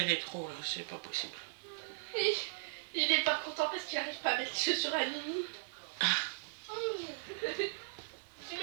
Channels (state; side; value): silent; left; 53 dB below the other